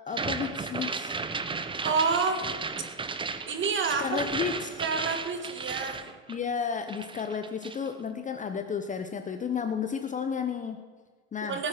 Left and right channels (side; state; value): both; normal; correlation 0.02